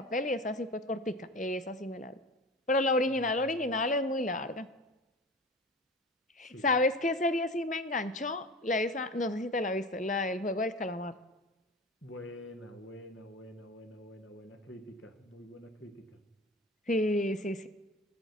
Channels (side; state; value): both; normal; correlation 0.33